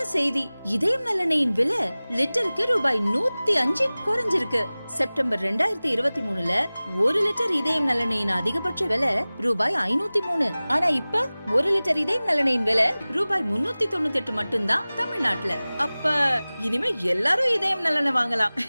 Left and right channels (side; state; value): both; inverted; correlation -0.99